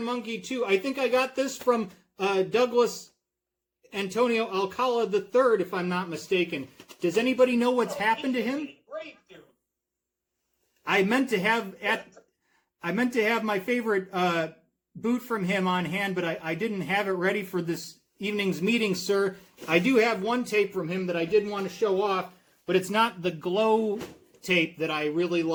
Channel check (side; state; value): both; identical; correlation 1.00